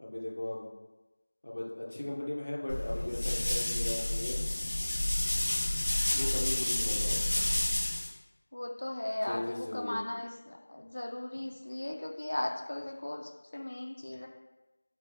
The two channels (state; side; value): inverted; both; correlation -1.00